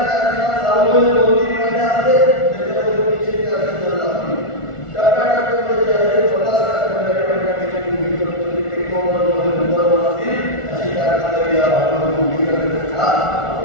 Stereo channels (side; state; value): right; late; 1.4 ms